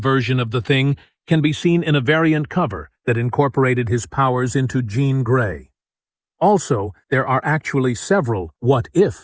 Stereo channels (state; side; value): identical; both; correlation 1.00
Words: of the Thing can be seen in a variant cover that incorporated his powers into Jean Grey. Also, there are actually several